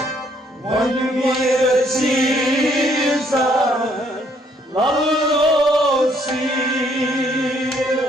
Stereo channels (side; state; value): both; normal; correlation 0.67